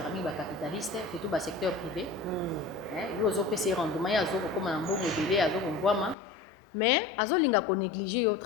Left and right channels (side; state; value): right; drops out; at 6.2 s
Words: mingi ba capitaliste surtout ba secteur privé yo zo pese rendement ya zo ko na mbongo délai azo ko ngwama mais azo linga ko négliger yo